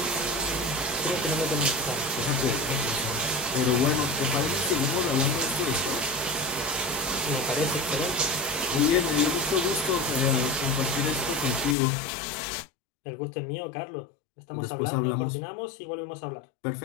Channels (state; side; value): drops out; right; at 11.8 s